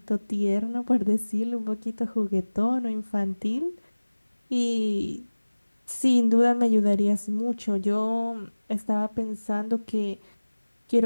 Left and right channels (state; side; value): inverted; both; correlation -1.00